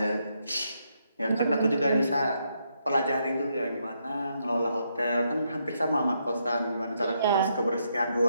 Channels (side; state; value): both; inverted; correlation -0.78